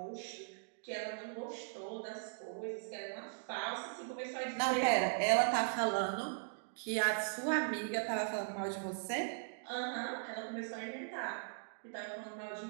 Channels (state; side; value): silent; left; digital silence